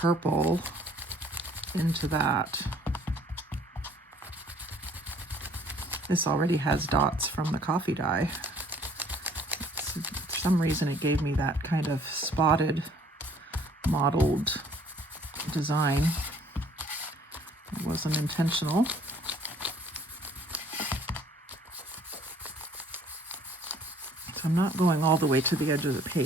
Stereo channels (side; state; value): both; normal; correlation 0.57